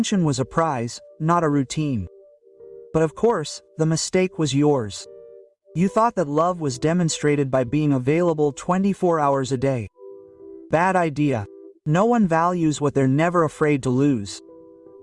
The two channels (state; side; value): identical; both; correlation 1.00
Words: was a prize, not a routine. But of course, the mistake was yours. You thought that love was demonstrated by being available 24 hours a day. Bad idea. No one values what they're never afraid to lose.